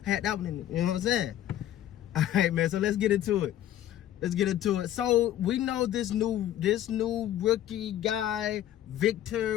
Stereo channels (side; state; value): right; quieter; 12.1 dB